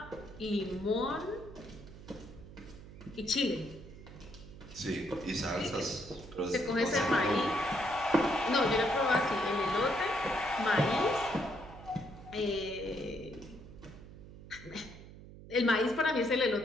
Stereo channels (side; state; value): right; noise; hum, 16 dB below the sound